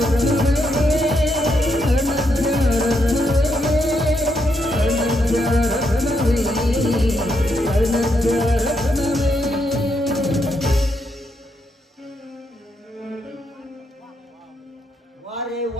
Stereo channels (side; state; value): both; normal; correlation 0.79